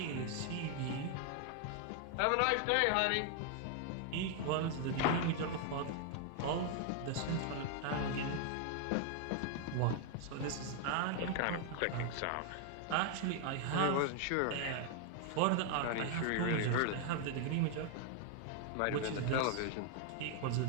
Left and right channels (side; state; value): both; different; correlation 0.00